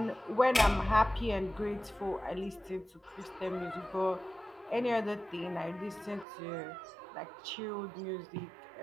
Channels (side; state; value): left; drops out; at 6.2 s